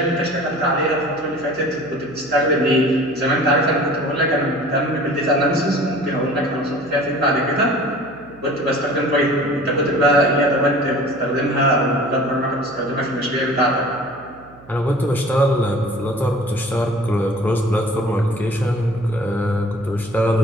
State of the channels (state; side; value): noise; right; hum, 23 dB below the sound